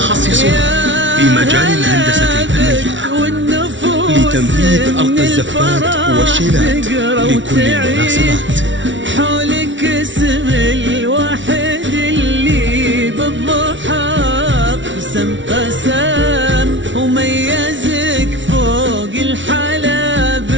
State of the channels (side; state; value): left; late; 0.55 ms